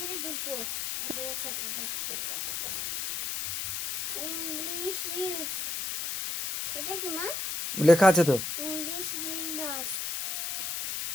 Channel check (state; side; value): noise; left; hiss, 2 dB below the sound